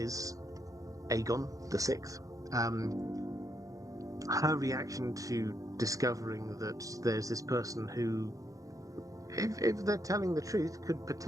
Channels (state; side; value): late; left; 0.16 ms